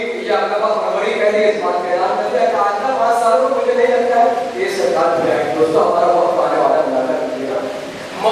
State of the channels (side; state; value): both; identical; correlation 1.00